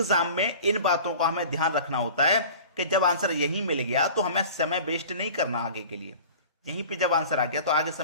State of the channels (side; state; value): both; inverted; correlation -0.41